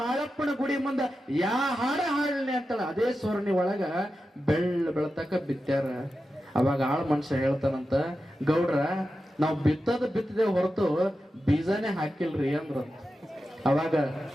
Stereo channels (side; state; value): both; normal; correlation 0.91